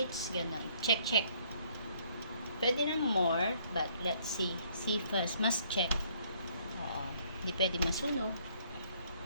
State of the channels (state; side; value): inverted; both; correlation -0.64